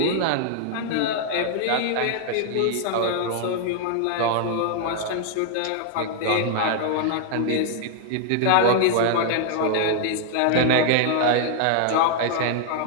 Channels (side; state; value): both; different; correlation 0.00